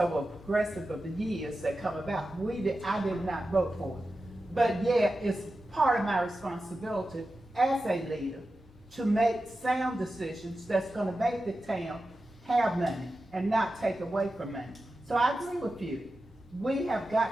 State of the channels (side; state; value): both; normal; correlation 0.92